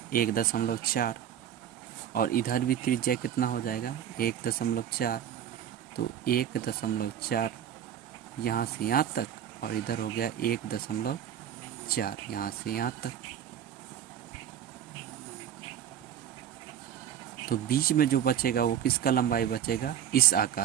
1.4 और इधर भी त्रिज्या कितना हो जाएगा 1.4, तो 1.4 यहाँ से यहाँ तक और इधर हो गया 1.4 यहाँ से यहाँ तक। तो बीच में जो बचेगा वो किसका लंबाई बचेगा इस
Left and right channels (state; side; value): quieter; left; 9.8 dB